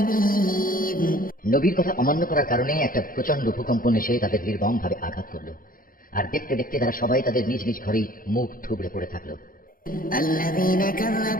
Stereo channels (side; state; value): right; late; 0.41 ms